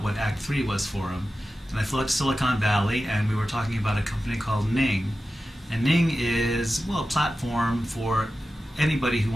what Act 3 was for him. And I flew out to Silicon Valley, and we were talking about a company called Ning. And Ning is, well, a platform for anybody who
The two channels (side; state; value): both; normal; correlation 0.93